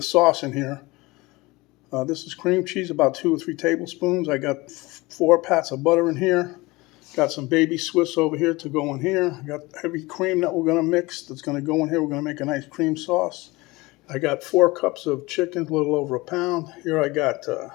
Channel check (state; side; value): quieter; right; 22.2 dB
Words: sauce in here. This is cream cheese, about 2 or 3 tablespoons. I got 4 pats of butter in here. Got some baby Swiss over here to go in here. I got heavy cream that we're going to mix that's going to go in here. We're going to make a nice cream sauce. I got 4 cups of chicken, a little over a pound. Here I got